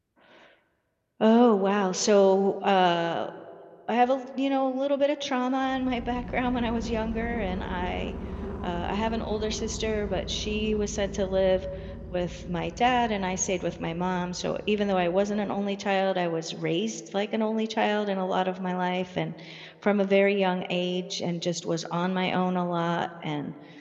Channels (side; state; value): both; identical; correlation 1.00